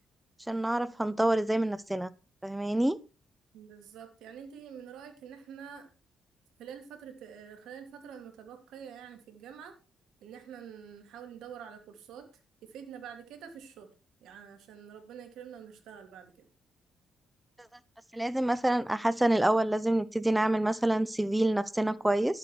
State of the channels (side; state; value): both; normal; correlation 0.98